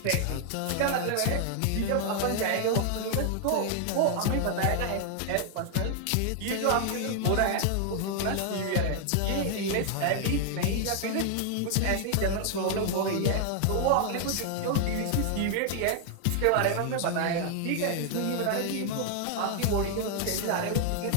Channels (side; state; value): both; different; correlation 0.00